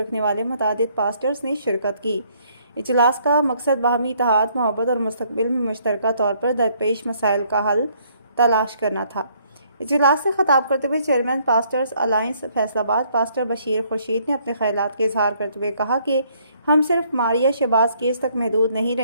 वाले मुतअद्दिद पास्टर्स ने शिरकत की। इजलास का मकसद बाहमी इत्तेहाद, मोहब्बत और मुस्तक़बिल में मुश्तरका तौर पर दरपेश मसाइल का हल तलाश करना था। इजलास से खिताब करते हुए chairman pastors alliance Faisalabad pastor Bashir Khurshid ने अपने ख्यालात के इजहार करते हुए कहा कि हम सिर्फ मारिया शहबाज केस तक महदूद नहीं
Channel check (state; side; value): inverted; both; correlation -0.66